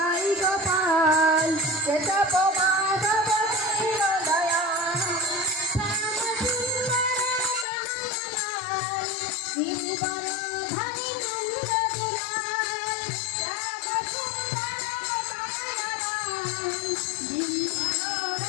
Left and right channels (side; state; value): right; drops out; at 7.7 s